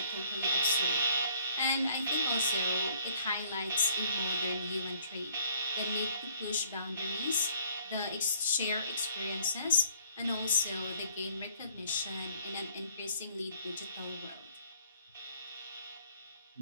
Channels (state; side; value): inverted; both; correlation -0.61